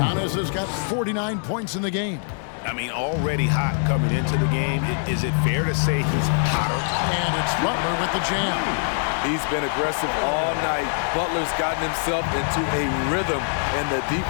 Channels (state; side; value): silent; right; 63 dB below the other